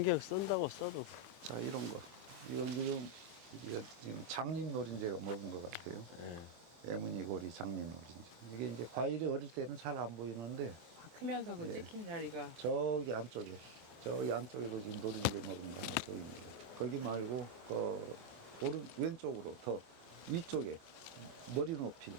쓴다고 써도. 자, 이런 거. 이건 지금 장립 노린재가 먹은 것 같아요. 네. 애무늬고리 장립 노린재. 이게 이제 과일이 어릴 때는 잘 안 보이는데 크면서 그 예. 찍힌 자리가 저기 안쪽에도 지금 노린재 먹은 거 하나 보입니다. 거기 말고 왼쪽으로 더 위쪽에 머리 높이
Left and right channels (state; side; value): late; left; 24 ms